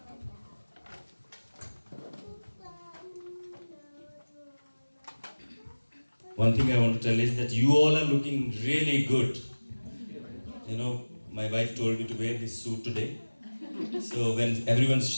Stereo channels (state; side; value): inverted; both; correlation -1.00